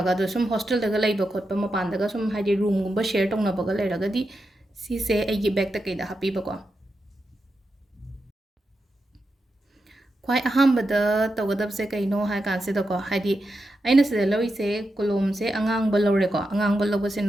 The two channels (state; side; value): normal; both; correlation 0.88